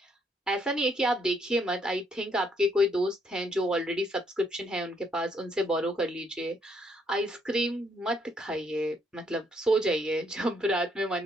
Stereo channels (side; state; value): both; normal; correlation 0.72